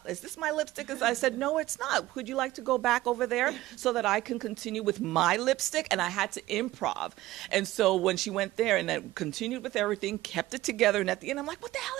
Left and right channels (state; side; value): quieter; left; 16.8 dB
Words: this my lipstick? I said, no, it's not. Would you like to go back over there so that I can continue with my lipstick? And I had to improv. And so when she went there and then continued with everything, kept it together. And at the end, I'm like, what the hell